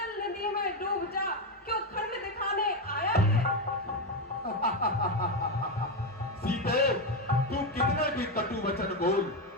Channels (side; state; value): both; normal; correlation 0.10